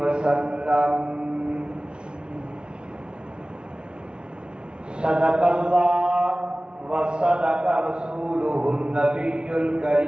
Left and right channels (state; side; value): late; left; 0.056 ms